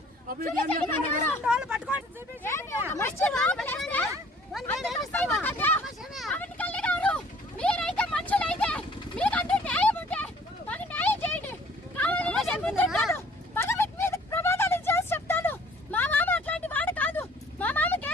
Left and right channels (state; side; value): normal; both; correlation 0.55